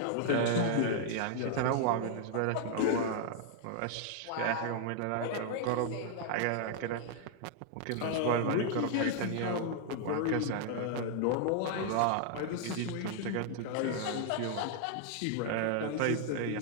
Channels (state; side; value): different; both; correlation -0.01